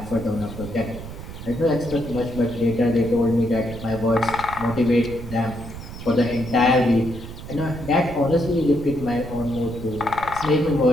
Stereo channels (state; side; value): noise; right; rumble, 12 dB below the sound